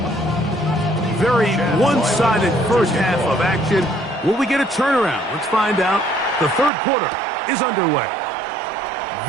Very one-sided first half of action. Will we get a turnaround? Let's find out. The third quarter is underway.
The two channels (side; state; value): left; drops out; at 6.7 s